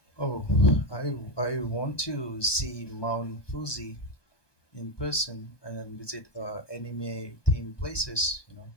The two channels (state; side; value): late; right; 1.2 ms